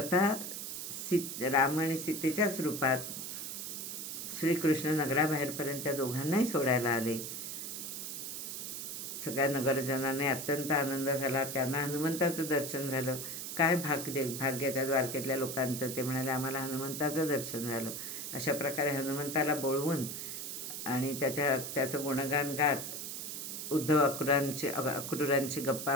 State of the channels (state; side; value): noise; right; hiss, 6 dB below the sound